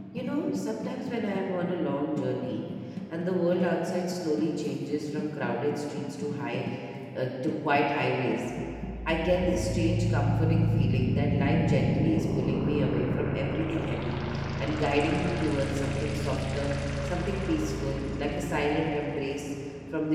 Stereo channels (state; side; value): identical; both; correlation 1.00